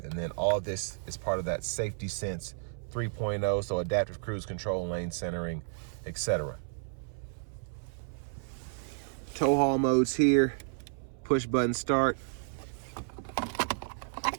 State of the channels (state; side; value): silent; left; 56 dB below the other